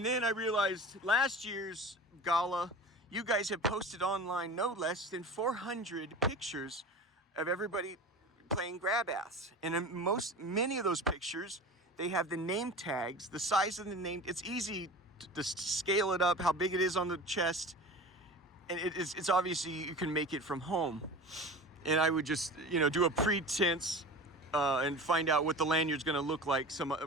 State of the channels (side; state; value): both; normal; correlation 0.35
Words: then I realized last year's gala, you guys have posted online no less than 400 pictures of everybody playing grab ass. And in many of those pictures, they have the name tags, the size of the name. It's easy to scale it up, how big it is on the chest. And it's obviously you can make it from home. And I would just, do a pretense and find out what the lanyard's going to look like